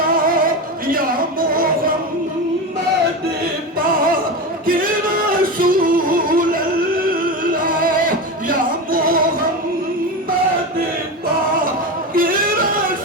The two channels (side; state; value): both; normal; correlation 0.21